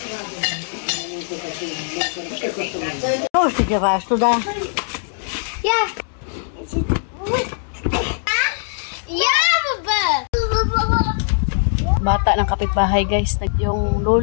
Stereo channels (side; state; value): right; silent; digital silence